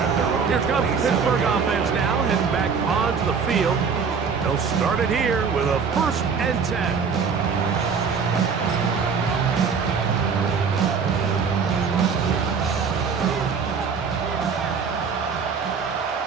Here comes the Pittsburgh offense now, heading back onto the field. They'll start it here with a 1st and 10.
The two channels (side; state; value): left; quieter; 5.8 dB